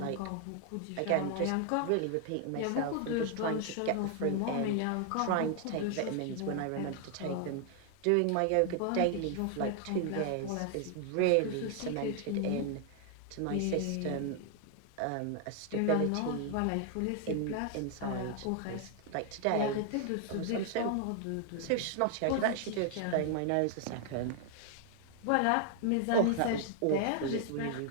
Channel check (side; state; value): both; different; correlation 0.00